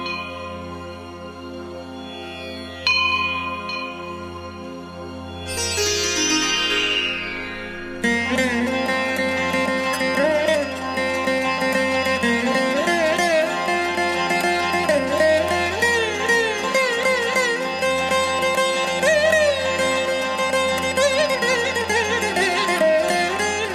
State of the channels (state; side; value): identical; both; correlation 1.00